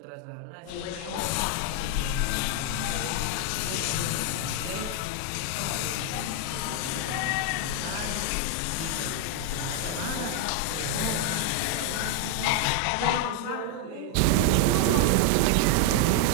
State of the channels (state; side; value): different; both; correlation 0.00